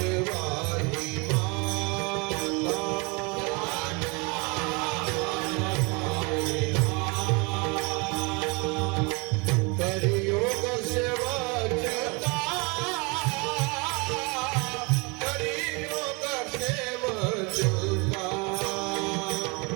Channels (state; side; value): quieter; left; 29.6 dB